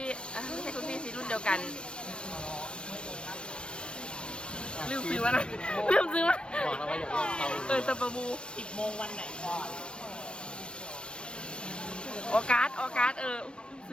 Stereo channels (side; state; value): right; late; 0.056 ms